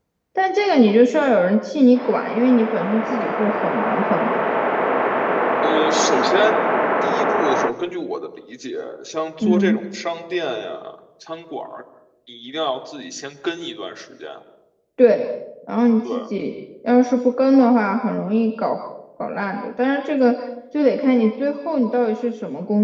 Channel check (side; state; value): both; identical; correlation 1.00